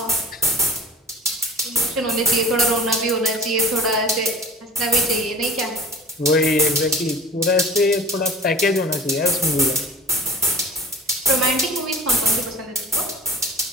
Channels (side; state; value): both; normal; correlation 0.41